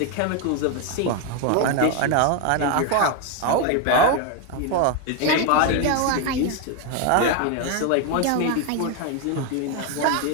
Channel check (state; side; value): different; both; correlation 0.02